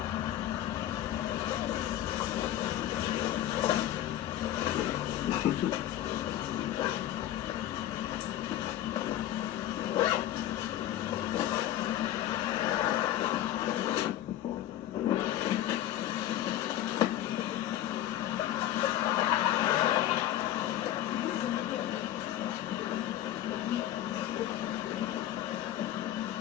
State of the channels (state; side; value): quieter; right; 12.7 dB